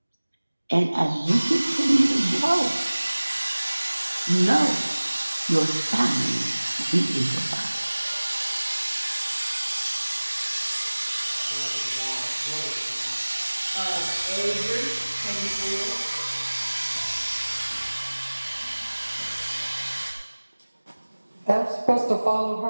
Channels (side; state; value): both; inverted; correlation -1.00